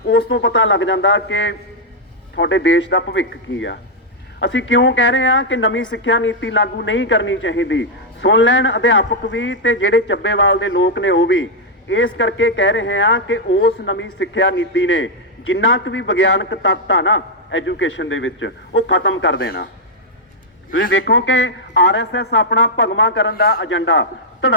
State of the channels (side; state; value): both; normal; correlation -0.03